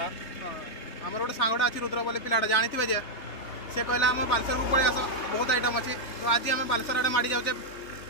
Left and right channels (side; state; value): right; late; 3.2 ms